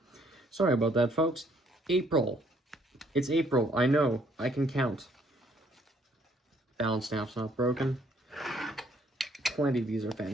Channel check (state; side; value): normal; both; correlation 0.66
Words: Sorry about that, folks. April. It's April. I know. I can count. Balance staff's not broken. Plenty of these are